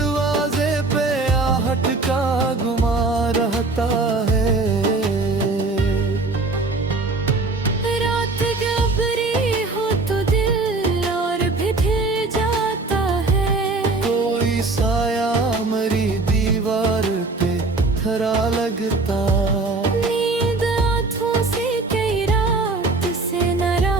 पे आहट का गुमा रहता है। रात गहरी हो तो दिल और भी ढल जाता है, कोई साया मरी दीवार पे खरा लगता। नींद आँखों से कई रात से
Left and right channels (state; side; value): quieter; left; 3.5 dB